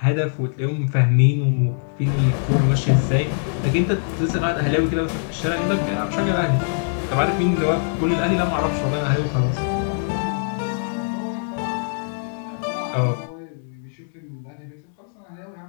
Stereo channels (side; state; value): right; silent; digital silence